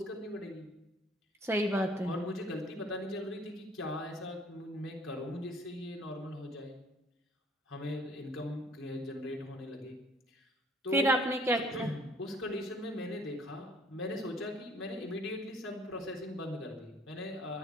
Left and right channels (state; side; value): normal; both; correlation 0.57